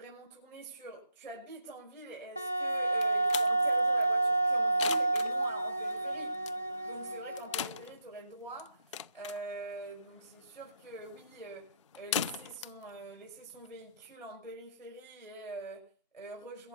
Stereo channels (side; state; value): both; inverted; correlation -0.82